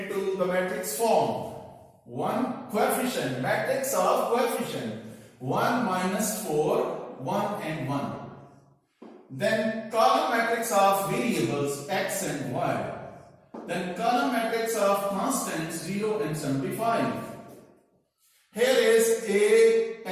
the matrix form. One coefficient, matrix of coefficient, 1 minus 4, 1 and 1. Then column matrix of variables x and y. Then column matrix of constants 0 and 75. Here is A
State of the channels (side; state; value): both; identical; correlation 1.00